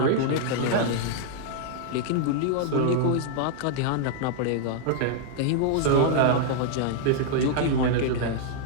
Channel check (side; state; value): both; different; correlation -0.01